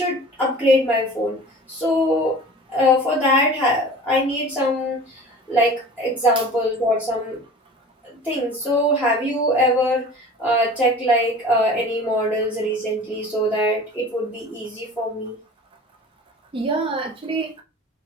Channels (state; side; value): normal; both; correlation 0.40